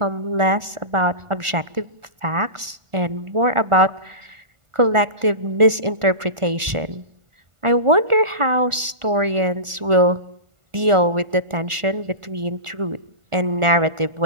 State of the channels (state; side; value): late; left; 1.4 ms